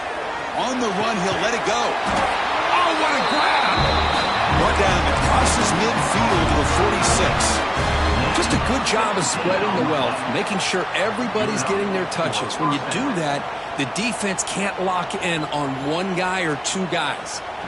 On the run, he'll let it go. Oh, what a grab! Brought down, it crosses midfield to the 46. Just a good job of spreading the wealth, making sure everybody's getting their touches. When you do that, the defense can't lock in on one guy or two guys.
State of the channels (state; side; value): identical; both; correlation 1.00